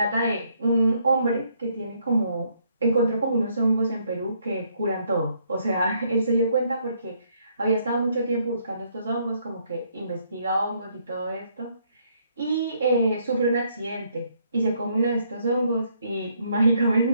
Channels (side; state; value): both; inverted; correlation -0.70